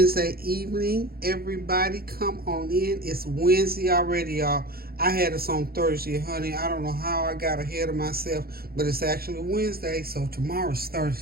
evening, everybody. Come on in. It's Wednesday already, y'all. I had us on Thursday, honey. I don't know how I got ahead of myself, but it's actually Wednesday, so tomorrow's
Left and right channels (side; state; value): left; late; 0.44 ms